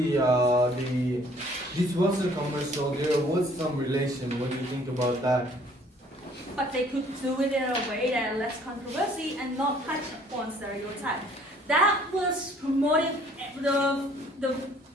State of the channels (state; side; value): normal; both; correlation 0.58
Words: this was a commercial. There was some relation. What do you think about that? But they could do it in a way that less controversy and not touch upon stereotype. That was promoted, the